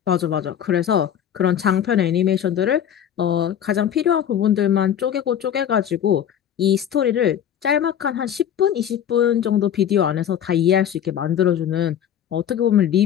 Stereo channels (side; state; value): right; quieter; 9.6 dB